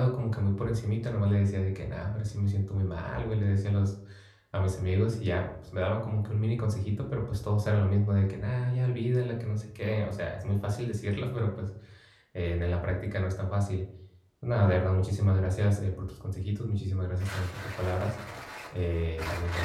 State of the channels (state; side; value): identical; both; correlation 1.00